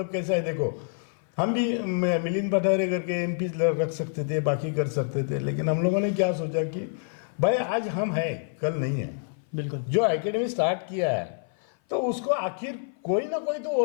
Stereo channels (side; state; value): right; silent; 56 dB below the other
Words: कैसा है, देखो हम भी मिलिंद पठारे करके एमपी रख सकते थे, बाकी कर सकते थे, लेकिन हम लोगों ने क्या सोचा कि भाई आज हम हैं, कल नहीं है। बिल्कुल। जो एकेडमी स्टार्ट किया है तो उसको आखिर कोई ना कोई तो